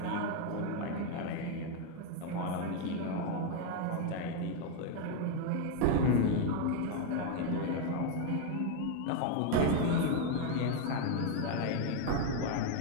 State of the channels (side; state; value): both; different; correlation 0.01